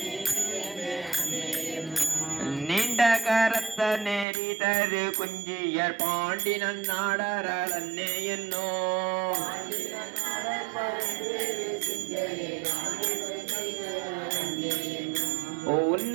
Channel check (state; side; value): drops out; left; at 4.2 s